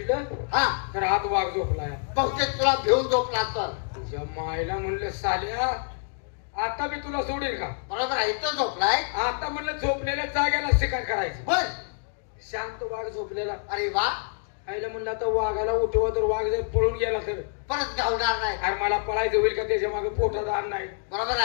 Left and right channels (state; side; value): silent; right; 60 dB below the other